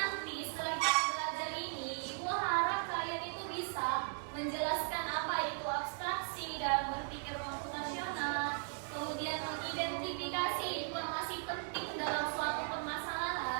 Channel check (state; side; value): silent; left; 53 dB below the other